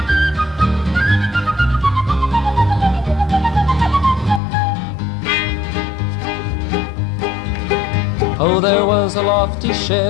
Oh, there was a lofty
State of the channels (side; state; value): right; drops out; at 4.4 s